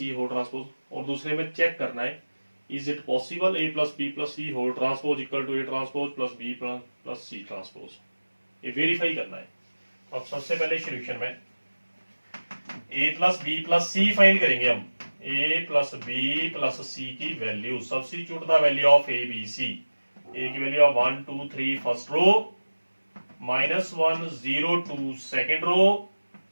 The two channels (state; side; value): inverted; both; correlation -1.00